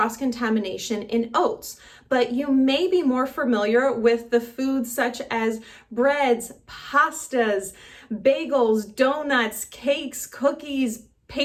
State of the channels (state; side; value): identical; both; correlation 1.00